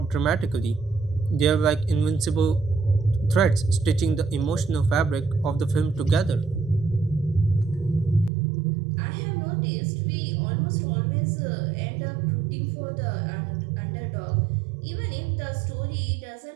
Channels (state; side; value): drops out; left; at 8.3 s